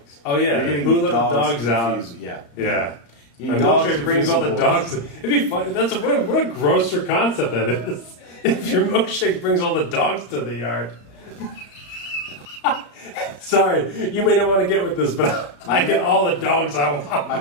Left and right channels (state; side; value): late; right; 35 ms